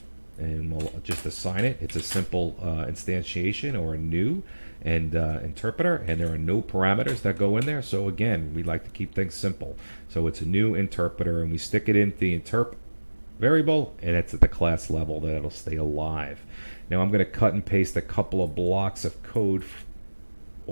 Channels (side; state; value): both; inverted; correlation -1.00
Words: and we'll just assign it. It's a simple instantiation or a new and interpreter, and there are no parameters that go in there. So again, we like to keep things simple. So it's a new interpreter, and we stick it into the interp variable, and it's at the class level that it'll stay alive. Now I'm going to cut and paste a couple of blocks of code